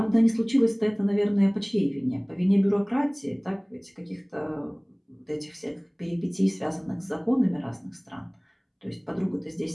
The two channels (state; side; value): identical; both; correlation 1.00